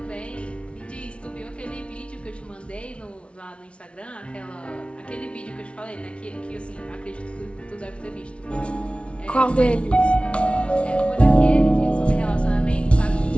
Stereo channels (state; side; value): late; right; 0.060 ms